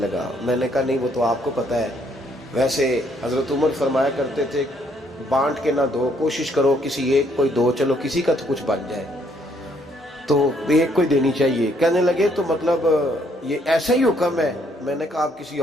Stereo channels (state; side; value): normal; both; correlation 0.68